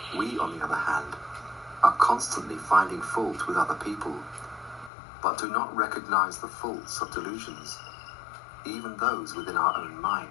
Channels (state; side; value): drops out; right; at 4.9 s